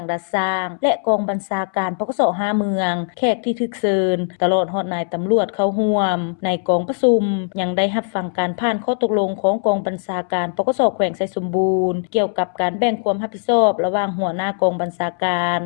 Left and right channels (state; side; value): silent; right; 66 dB below the other